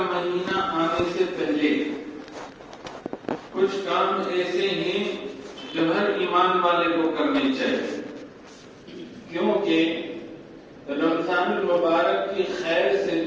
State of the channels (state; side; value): identical; both; correlation 1.00